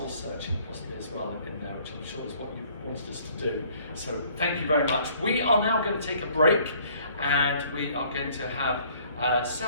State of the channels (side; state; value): both; inverted; correlation -0.58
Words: searching possibly as well in there, which I'm sure is what you wanted us to do. So thank you very much. We are now going to take a break, and we are going to have